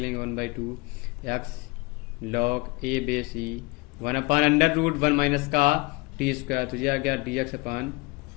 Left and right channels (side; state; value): right; quieter; 25.8 dB